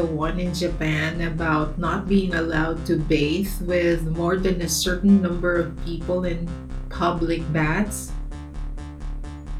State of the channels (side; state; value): both; identical; correlation 1.00